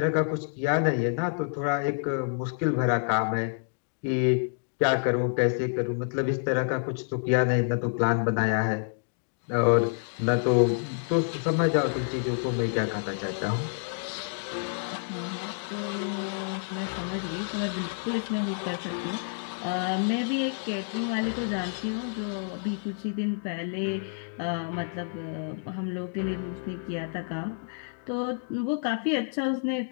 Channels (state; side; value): silent; right; digital silence